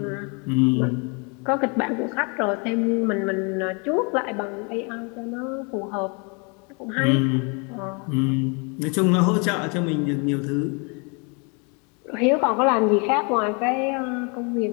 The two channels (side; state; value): right; quieter; 33.4 dB